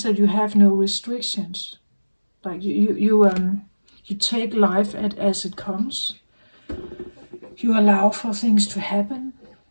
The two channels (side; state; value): both; inverted; correlation -1.00